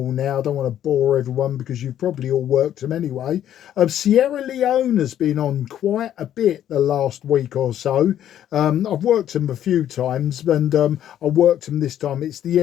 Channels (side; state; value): right; quieter; 11.0 dB